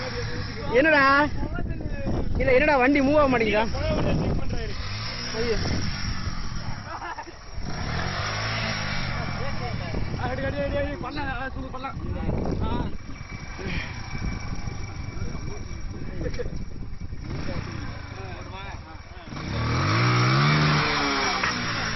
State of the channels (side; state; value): both; identical; correlation 1.00